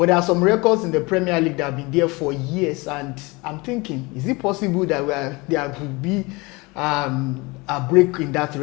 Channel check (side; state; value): right; quieter; 25.0 dB